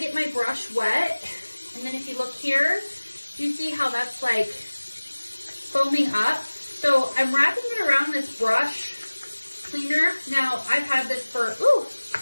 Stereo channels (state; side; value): inverted; both; correlation -1.00